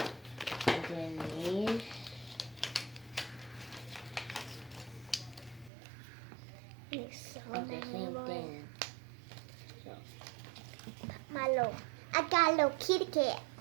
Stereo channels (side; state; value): left; drops out; at 5.7 s